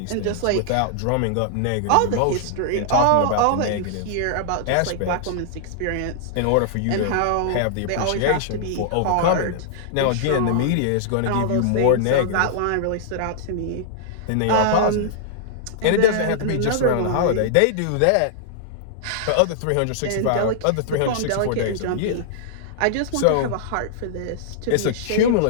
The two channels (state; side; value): different; both; correlation -0.01